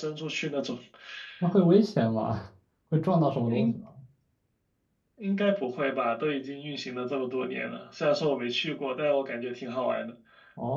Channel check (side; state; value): both; identical; correlation 1.00